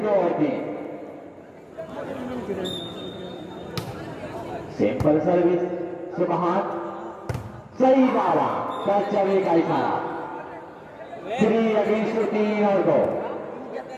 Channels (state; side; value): identical; both; correlation 1.00